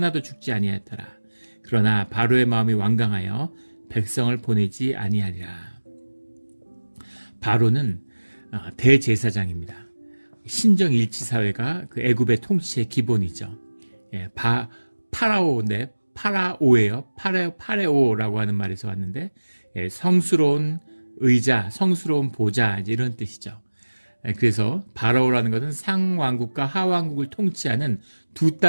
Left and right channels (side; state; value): both; inverted; correlation -1.00